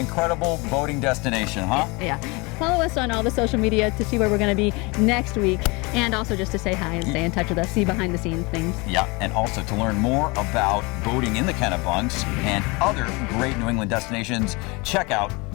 boating destination, huh? Yeah. Follow us on all the social media to see where we're going to be next week, and also just to say hi and stay in touch with us, see behind the scenes things. Yeah, and also to learn more about boating in the Kennebunks and other great New England destinations, check out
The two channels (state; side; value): quieter; right; 26.8 dB